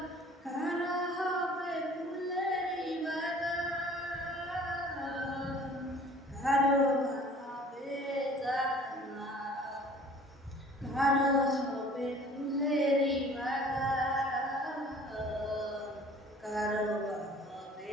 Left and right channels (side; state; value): both; normal; correlation 0.49